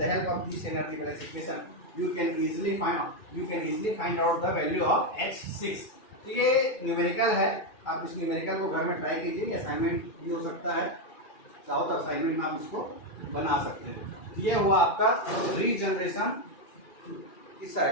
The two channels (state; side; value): late; right; 2.3 ms